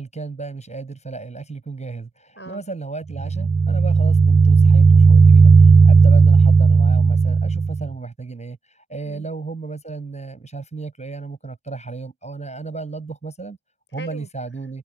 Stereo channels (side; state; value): left; quieter; 4.5 dB